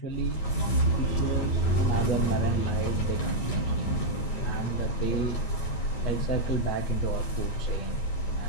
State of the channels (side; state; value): right; late; 9.0 ms